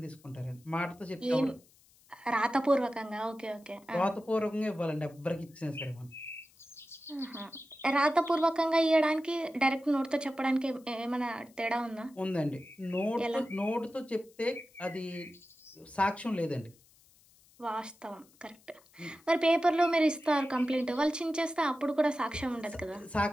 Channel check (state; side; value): noise; left; hiss, 29 dB below the sound